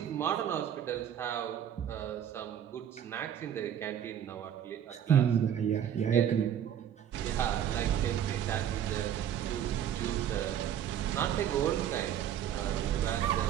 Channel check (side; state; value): left; quieter; 9.8 dB